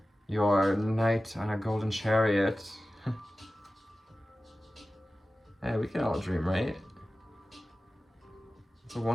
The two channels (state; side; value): normal; both; correlation 0.95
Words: Your knight on a golden chariot. Hey, we can all dream, right? It's a